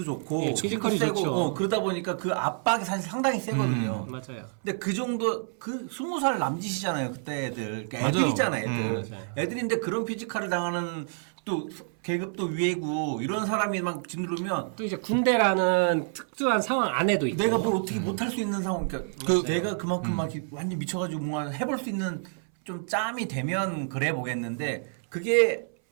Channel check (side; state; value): left; silent; 59 dB below the other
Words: 좋고 예, 피지컬이 세고 좋죠. 그러다 보니까 그 압박이 사실 상당히 세거든요. 맞아요. 근데 그 정도 그 20살 남짓이잖아요 그때 애들. 그러니까 맞아요. 애들이잖아 애들. 맞아요. 애들인데 그런 피지컬을 당하는 또 계급도 위에고 이런 사람이 막 짓누르면 또 이제 군대라는 특수한 상황 안에도 있고. 내가 뭘 어떻게 못할 수 있는 상황, 그러니까 내가 그만큼 막 이렇게 완전 미쳐가지고 뭔가 해볼 수 있는 좀 짬이 되면 그래 보겠는데 그게